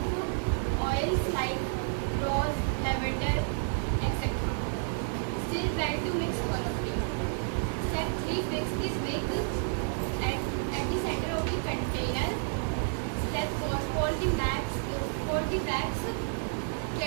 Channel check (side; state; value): left; silent; digital silence